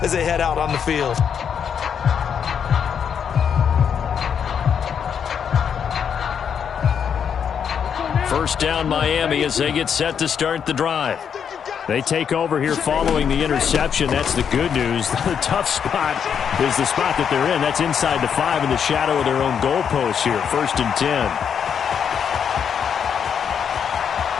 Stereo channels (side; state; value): right; quieter; 7.6 dB